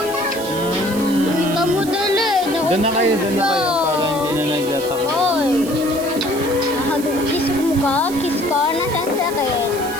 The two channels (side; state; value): right; noise; hiss, 13 dB below the sound